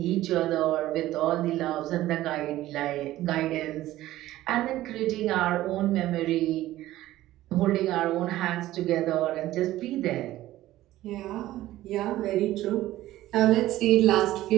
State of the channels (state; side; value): quieter; left; 15.2 dB